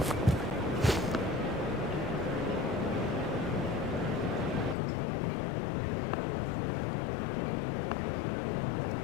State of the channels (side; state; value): right; drops out; at 4.8 s